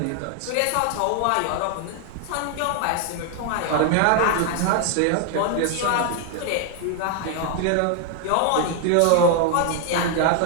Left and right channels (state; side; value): different; both; correlation 0.00